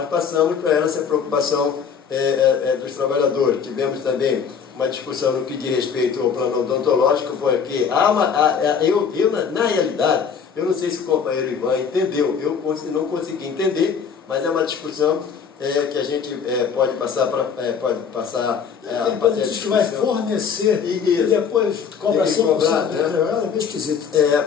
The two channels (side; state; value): right; quieter; 6.7 dB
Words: passamos para ela essa preocupação dos trabalhadores. Tivemos também uma discussão no que diz respeito ao plano odontológico, porque na realidade, eu não sei se o companheiro Ivan entendeu, eu não consegui entender, mas é uma discussão que a gente pode passar a fazer a diz que vai fornecer e depois cobra 100%, né? É bem esquisito.